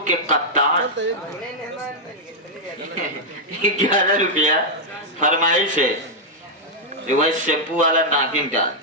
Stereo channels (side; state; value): both; normal; correlation -0.04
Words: के कप्तान 11 रुपया फरमाइश है। वही शैम्पू वाला नागिन का